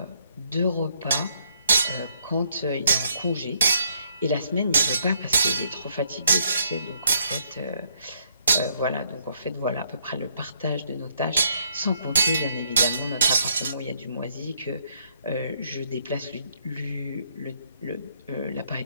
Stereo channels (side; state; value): both; inverted; correlation -0.70